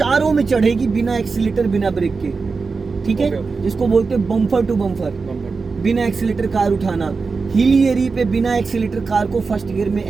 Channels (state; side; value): quieter; left; 4.5 dB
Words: में चढ़ेगी, बिना एक्सीलेटर बिना ब्रेक के। ठीक है, जिसको बोलते हैं बम्पर टू बम्पर। बिना एक्सीलेटर कार उठाना, हिली एरिया पे बिना एक्सीलेटर कार को फर्स्ट गियर में